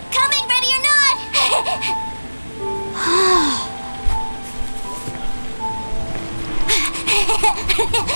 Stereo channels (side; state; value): both; inverted; correlation -1.00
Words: Coming, ready or not?